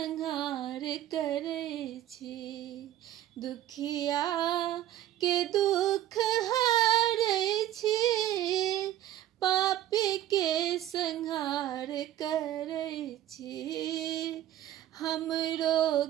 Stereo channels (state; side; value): quieter; left; 12.8 dB